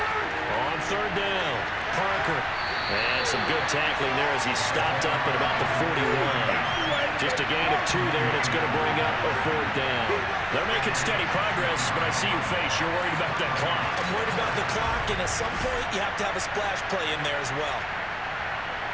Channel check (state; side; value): identical; both; correlation 1.00